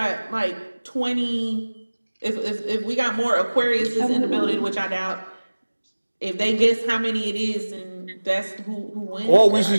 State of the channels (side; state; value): both; inverted; correlation -1.00